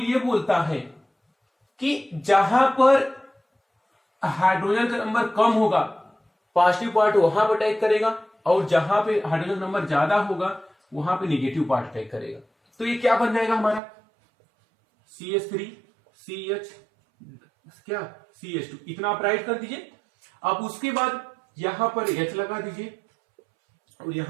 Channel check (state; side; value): drops out; left; at 13.8 s